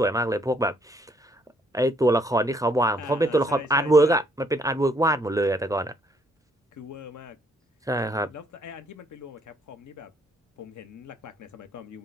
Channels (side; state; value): both; normal; correlation 0.68